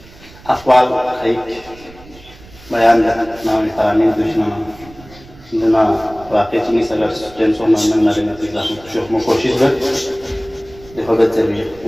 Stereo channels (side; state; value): right; noise; rumble, 22 dB below the sound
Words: अक़वाल एक बयान नाम तरामीन दुश्मन जना वाक़ई चीनी सगर टेंसो मन नरे में तिला शोक में कोशिश कर देखो बच्चे भी